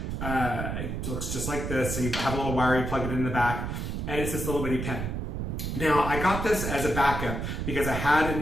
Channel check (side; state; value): right; noise; rumble, 3 dB below the sound